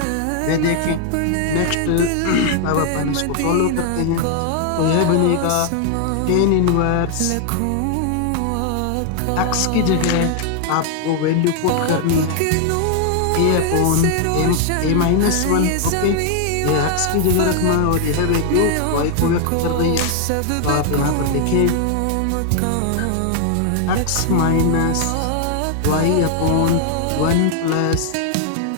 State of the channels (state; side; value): different; both; correlation 0.00